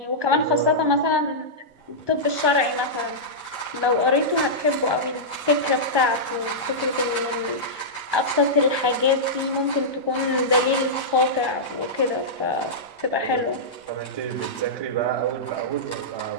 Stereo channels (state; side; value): late; left; 1.3 ms